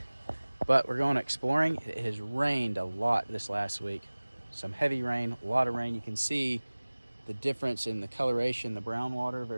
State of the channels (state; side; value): inverted; both; correlation -1.00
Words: But we're going exploring. It has rained a lot this last week. Some heavy rain, a lot of rain. You can see the difference in the coloration, the brown water